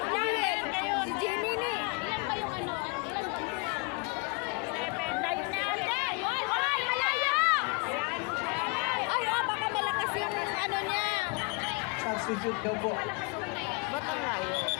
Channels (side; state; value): right; quieter; 30.5 dB